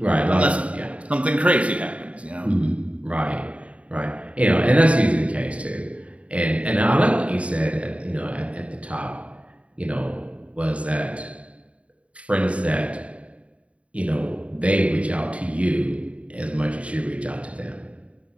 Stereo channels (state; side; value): late; left; 0.064 ms